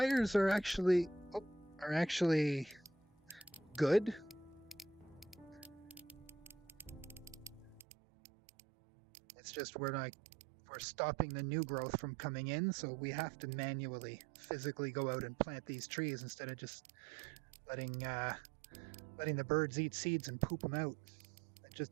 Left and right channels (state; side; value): drops out; left; at 7.9 s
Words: are actually good. It's just we're stopping the new growth from coming in, so we have to manually, physically go out and plant these trees instead of just letting the birds eat seeds and poop them out. It just